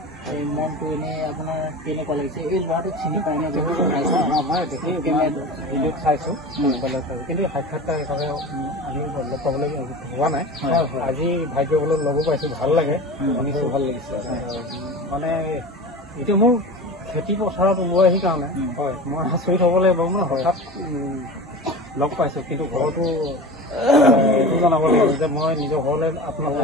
এই মনটো এনে আপোনাৰ কেনেকুৱা লাগিছে এই ল'ৰাটোক চিনি পাই নে ভিডিঅ'ত চাইছো কিন্তু সাক্ষাৎকাৰ হিচাপে আমি লগ পাবলৈ হোৱা নাই আজি ভাগ্যবলত লগো পাইছো ভাল লাগে শুনিছো ভাল লাগিছে মানে এতিয়া মোৰ খেতি পথাৰত ওলাই আহি কাৰণে হয় মই আচৰিত হ'ব লাগিব মানে হঠাৎ লগ পাইছো কিন্তু ঘৰতো এইটো জনাব লাগিব যে মই নিজৰ ঘৰলৈ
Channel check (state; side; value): normal; both; correlation 0.32